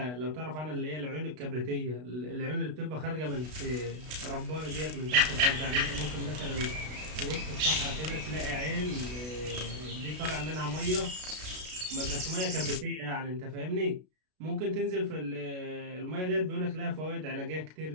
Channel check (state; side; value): late; left; 32 ms